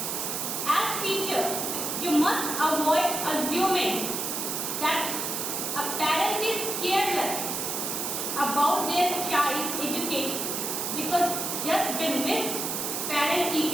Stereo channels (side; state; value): right; noise; hiss, 2 dB below the sound